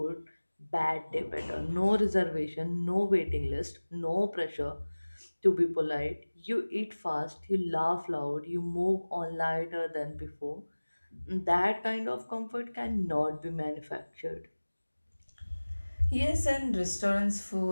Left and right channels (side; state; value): both; inverted; correlation -1.00